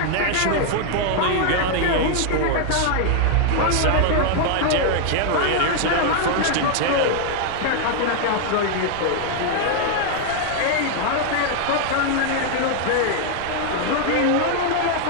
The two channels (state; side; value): different; both; correlation 0.00